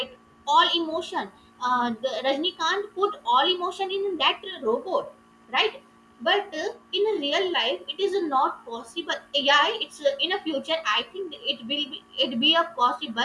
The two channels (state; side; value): identical; both; correlation 1.00